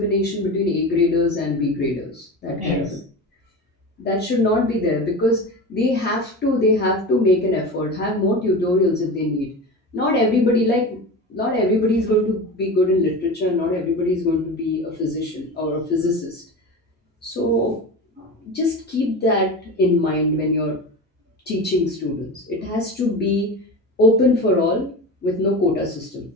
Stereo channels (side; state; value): both; normal; correlation 0.28